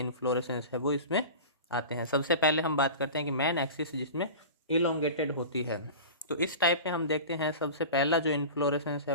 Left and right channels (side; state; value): both; inverted; correlation -0.34